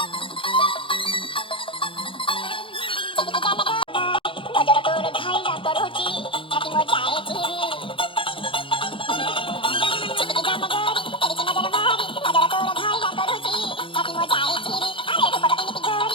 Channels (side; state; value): right; late; 0.25 ms